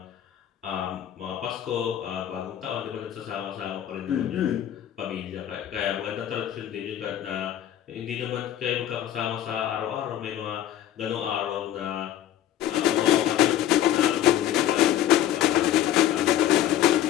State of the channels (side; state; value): right; quieter; 11.7 dB